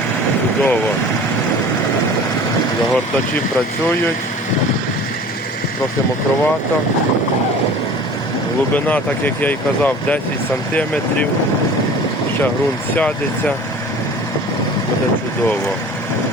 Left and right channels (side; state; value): both; normal; correlation 0.43